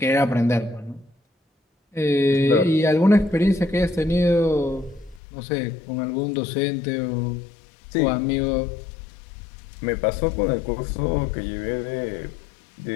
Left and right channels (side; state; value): right; drops out; at 5.2 s